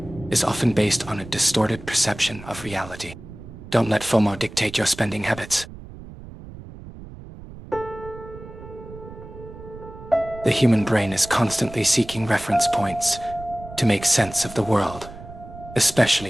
is often based on a distorted perception of reality. Don't let FOMO dictate your spending habits. The human brain is constantly seeking reference points to make sense of the world,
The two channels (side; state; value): right; noise; rumble, 15 dB below the sound